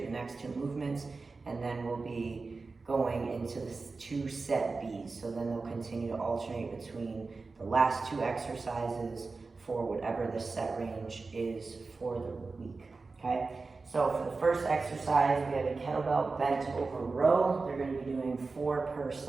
the next 2 movements, and then we'll be going into the 2 set B's. So then they'll continue to alternate between the last 2 exercises for whatever the set range is for the week, okay? So for the first exercise, we have a kettlebell bent over row. They're gonna be doing 4 per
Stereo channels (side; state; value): left; quieter; 4.0 dB